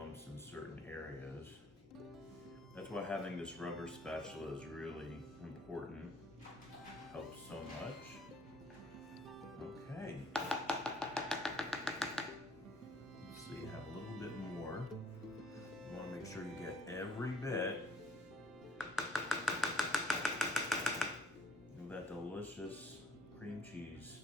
in certain areas. That's why having this rubber spatula is really important. Helps so much. Okay. So you have a little bit more. You want to make sure you get every bit of that delicious cream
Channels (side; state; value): both; normal; correlation 0.54